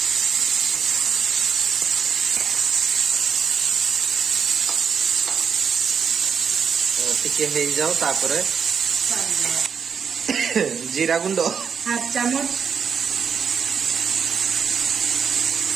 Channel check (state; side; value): quieter; left; 6.7 dB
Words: टिके हे जाओ तापरे जीरा गुंड हाफ चम्मच